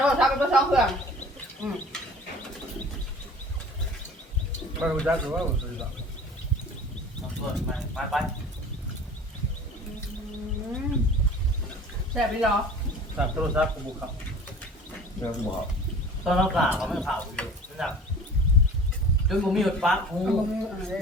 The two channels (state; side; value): normal; both; correlation 0.44